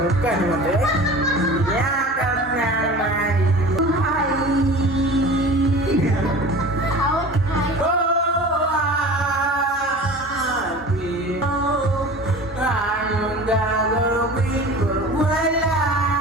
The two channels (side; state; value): both; normal; correlation 0.39